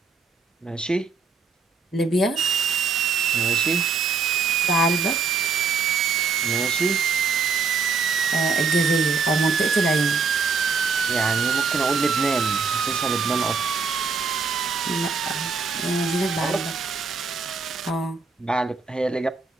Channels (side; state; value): left; quieter; 4.9 dB